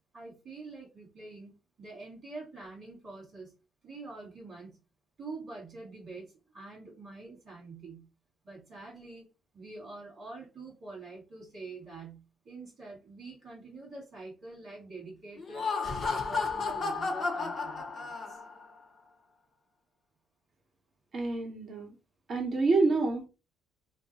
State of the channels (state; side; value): normal; both; correlation 0.81